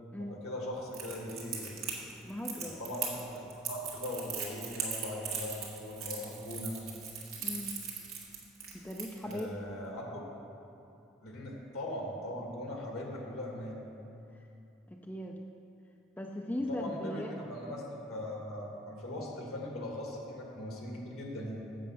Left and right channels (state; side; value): normal; both; correlation 0.42